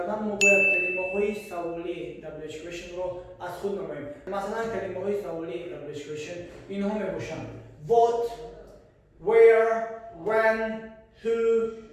ما باید کلمه‌های سوالی WH question رو از خود نماییم. مثلا کلمه‌های سوالی WH question اینها میباشند: what, where, when, who,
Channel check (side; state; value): both; identical; correlation 1.00